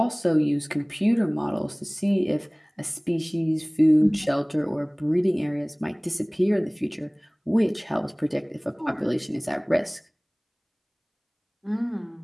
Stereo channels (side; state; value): both; identical; correlation 1.00